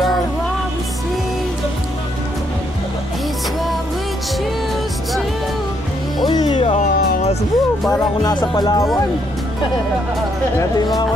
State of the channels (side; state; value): both; normal; correlation 0.73